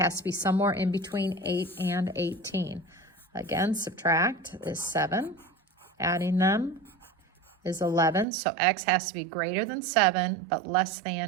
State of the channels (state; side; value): drops out; left; at 8.2 s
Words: to be somewhere in between 8 and 18. Again, subtract is 7. Adding them is 11. So x has to be greater than 7, but less